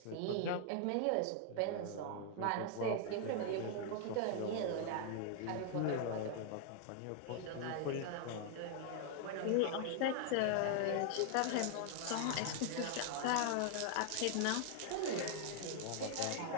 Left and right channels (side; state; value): both; different; correlation 0.00